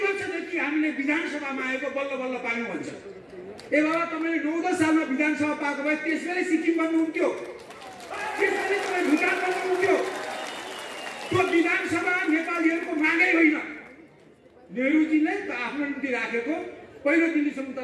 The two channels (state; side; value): identical; both; correlation 1.00